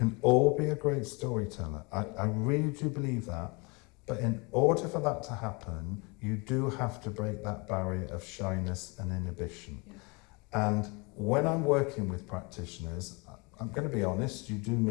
all be a great storyteller. I really do believe that. But in order for that to happen, you do have to break that barrier of shyness and inhibition. Yeah. And when I'm working with practitioners, I'm going to be honest, you do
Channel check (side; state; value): right; quieter; 29.1 dB